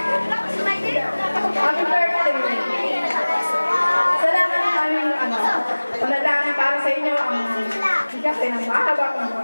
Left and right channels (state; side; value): inverted; both; correlation -1.00